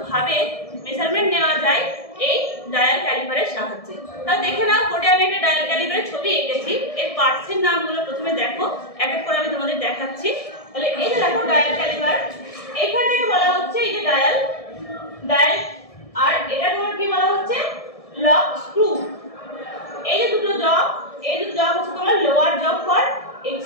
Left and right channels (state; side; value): late; right; 1.7 ms